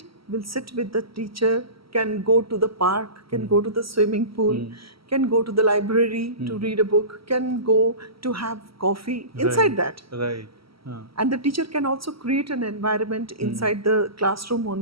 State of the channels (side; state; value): left; late; 0.75 ms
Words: will sit with the teacher, can go to the park, can go to the swimming pool, can go to the library to read a book, can go to have coffee inside that. Right. And the teacher can also create an environment inside the classroom